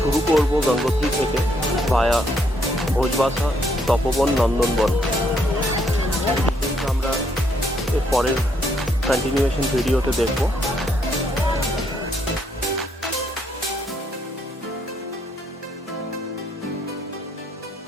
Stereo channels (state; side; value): normal; both; correlation 0.72